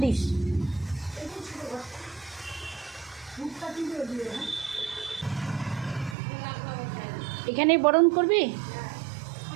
দিস। এখানেই বরণ করবি?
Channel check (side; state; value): left; drops out; at 6.2 s